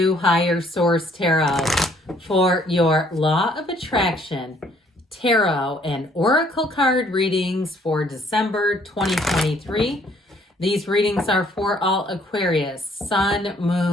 Higher Source Tarot for your Law of Attraction Tarot and Oracle card readings for December 2023. These readings are for all Aquarius, Sun,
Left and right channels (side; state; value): both; normal; correlation 0.63